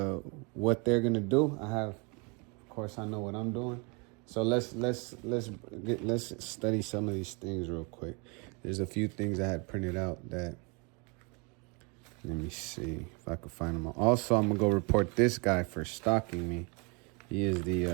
what they're gonna do. Of course, I know what I'm doing. So let's study some of these things real quick. There's a few things I had printed out that. Let me see if I can find them all. Also, I'm gonna go report this guy for stalking me. He is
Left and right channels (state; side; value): quieter; left; 31.8 dB